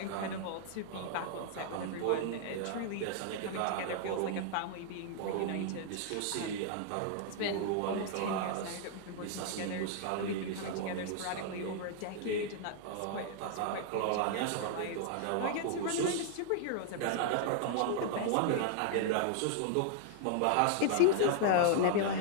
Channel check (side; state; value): both; different; correlation -0.01